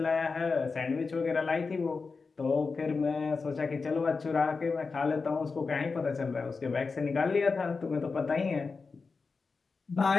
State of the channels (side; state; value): right; quieter; 4.5 dB